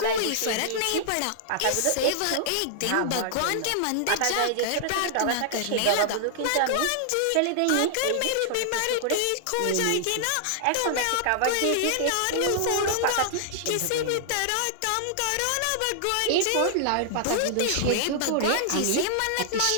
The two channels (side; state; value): both; different; correlation -0.01